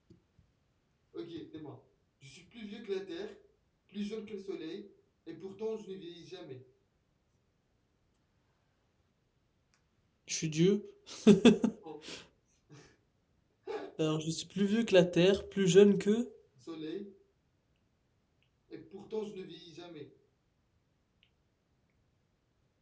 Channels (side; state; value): both; identical; correlation 1.00